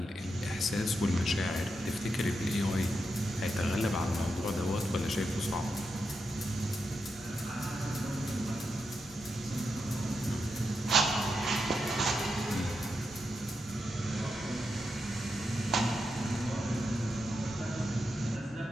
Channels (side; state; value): both; normal; correlation 0.85